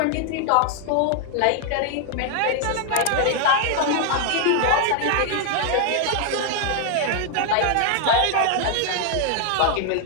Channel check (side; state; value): both; different; correlation 0.00